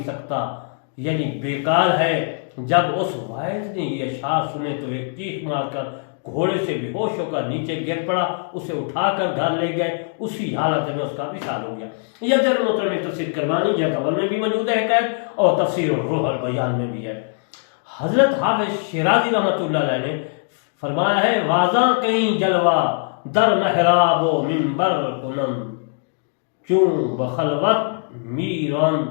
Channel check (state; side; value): silent; right; 65 dB below the other